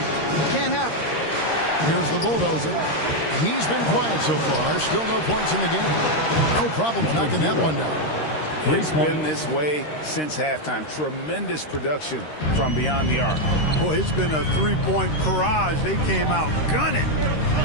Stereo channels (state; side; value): late; right; 13 ms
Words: Can't happen. Here's the bulldozer. He's been quiet so far. Still no points in the game. No problem knocking that one down. It's been this way since halftime. Tremendous production from beyond the arc. Boy, it's been a 3-point barrage. They came out gunning